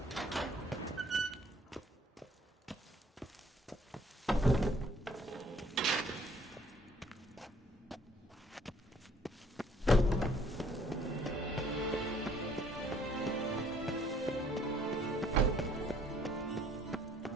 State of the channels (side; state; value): both; normal; correlation 0.61